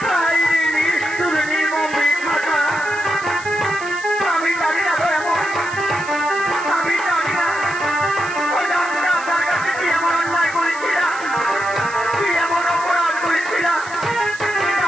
নিষ্ঠুর নির্মম বিধাতা। আমি জানি না এমন, আমি জানি না আপনার কাছে কি এমন অন্যায় করেছিলাম, কি এমন অপরাধ করেছিলাম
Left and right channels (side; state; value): right; noise; hiss, 17 dB below the sound